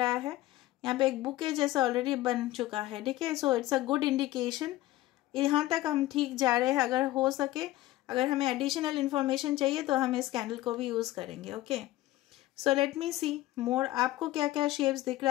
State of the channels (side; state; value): right; quieter; 16.4 dB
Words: है. यहाँ पे एक बुके जैसा ऑलरेडी बन चुका है. ठीक है, so it's a good indication. यहाँ तक हम ठीक जा रहे हैं. अगर हो सके, अगर हमें एडिशनल इन्फॉर्मेशन चाहिए तो हम इस कैंडल को भी यूज़ करेंगे. ओके, सो लेट मी सी मोर. आपको क्या क्या शेप्स दिख